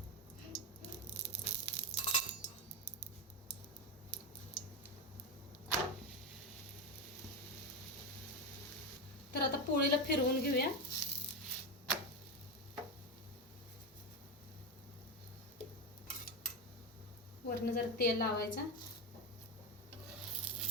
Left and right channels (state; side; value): normal; both; correlation 0.13